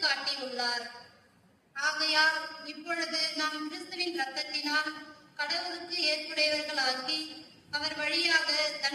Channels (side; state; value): both; identical; correlation 1.00